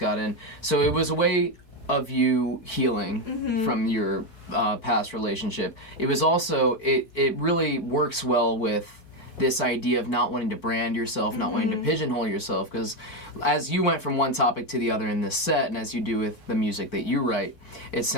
in. So it was a way of you healing from your past relationship. It was also, it really works well with this idea of not wanting to brand yourself, not wanting to pigeonhole yourself, because as you went from one topic to the other in this set, and as you do with the music that you write, it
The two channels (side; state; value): right; late; 4.5 ms